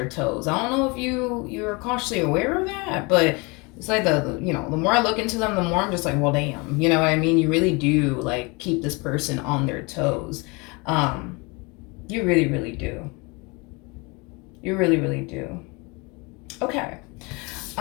toes. I don't know if you're consciously aware of that, but it's like the more I look into them, the more I'm just like, well, damn, you know what I mean? You really do like keep this person on their toes. You really, really do. You really, really do. Okay.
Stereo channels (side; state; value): right; quieter; 27.9 dB